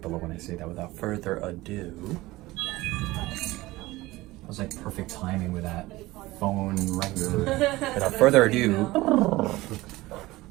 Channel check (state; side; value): quieter; left; 19.1 dB